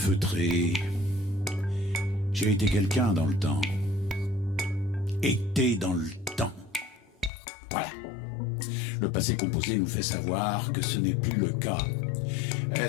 J'ai été quelqu'un dans le temps. Été dans le temps. Voilà. Le passé composé nous fait savoir que ce n'est plus le cas.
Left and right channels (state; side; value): drops out; right; at 7.3 s